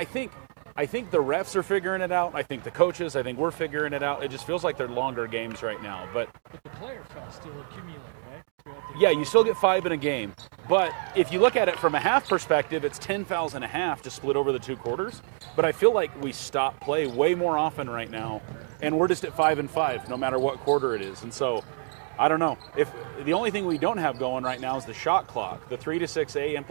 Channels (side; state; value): left; silent; 60 dB below the other